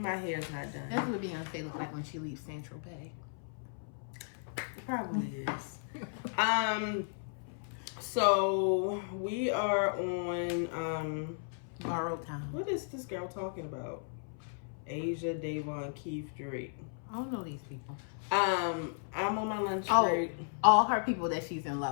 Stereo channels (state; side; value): silent; right; 54 dB below the other